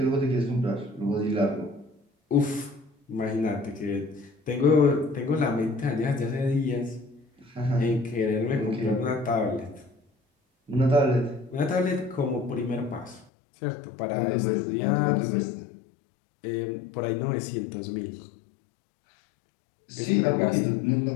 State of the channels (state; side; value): drops out; right; at 13.3 s